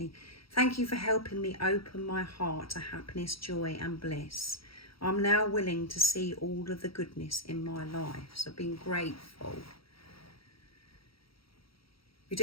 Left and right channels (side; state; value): right; late; 0.75 ms